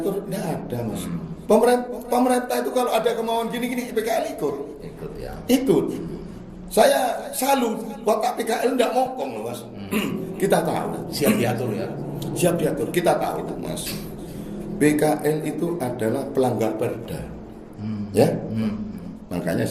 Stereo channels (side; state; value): both; identical; correlation 1.00